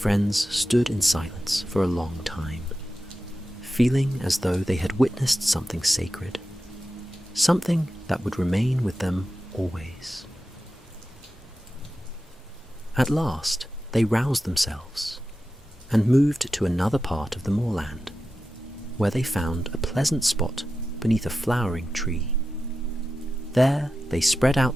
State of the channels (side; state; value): both; normal; correlation 0.92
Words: stood in silence for a long time, feeling as though they had witnessed something sacred, something that would remain with them always. At last, they roused themselves and moved to another part of the moorland, where they found a pleasant spot beneath a flowering tree. There they spread